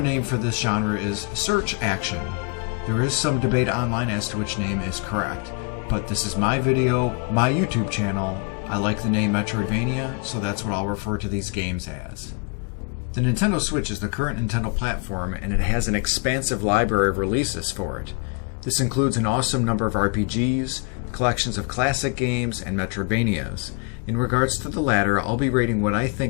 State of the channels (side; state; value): right; quieter; 31.6 dB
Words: name for this genre is search action. There is some debate online as to which name is correct, but this is my video, my YouTube channel. I like the name Metroidvania, so that's what I'll refer to these games as. The Nintendo Switch is the current Nintendo platform, and it has an expansive library of releases for it. This includes an awesome number of RPGs, collections of classic games, and Metroidvanias. In regards to the latter, I'll be rating what I